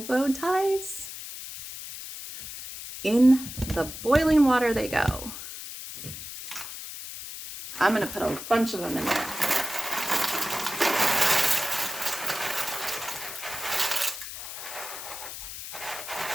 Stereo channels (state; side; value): noise; left; hiss, 10 dB below the sound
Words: bow ties? In the boiling water they go. I'm going to put a bunch of them in there.